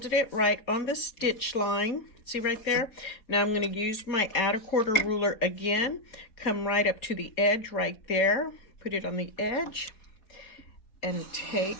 it right on the stitch line. See right there? Now I'm going to use my add a quarter ruler again. Come right up to the edge right there. Put it on the edge. And take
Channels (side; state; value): right; late; 4.4 ms